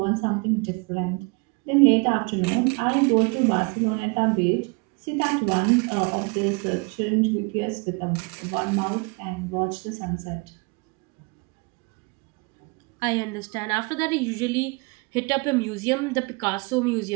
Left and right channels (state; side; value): quieter; left; 30.2 dB